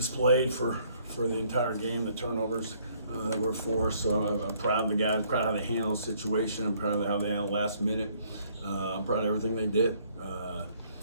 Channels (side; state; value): both; inverted; correlation -0.65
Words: for the entire game, the turnovers that were forced. So I'm proud of the guys, proud of how they handled the situation. I'm proud of how they handled last minute. I'm proud of everything they did.